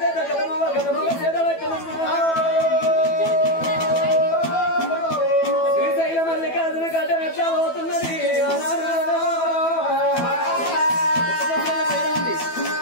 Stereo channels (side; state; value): right; late; 12 ms